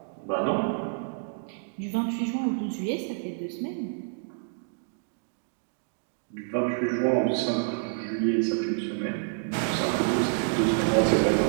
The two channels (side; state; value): left; silent; digital silence